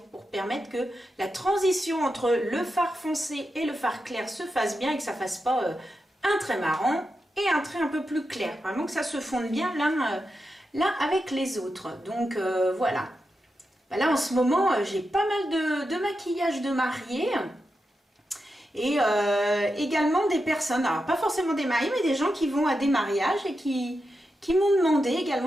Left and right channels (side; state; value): both; normal; correlation 0.88